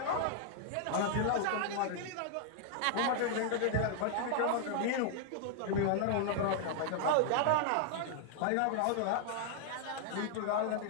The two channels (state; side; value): different; both; correlation 0.00